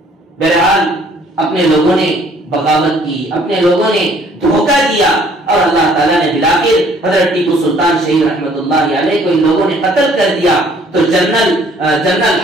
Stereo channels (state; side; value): normal; both; correlation 0.59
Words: بہرحال اپنے لوگوں نے بغاوت کی، اپنے لوگوں نے دھوکہ دیا، اور اللہ تعالیٰ نے بلاخر حضرت ٹیپو سلطان شہید رحمت اللہ علیہ کو ان لوگوں نے قتل کر دیا۔ تو جنرل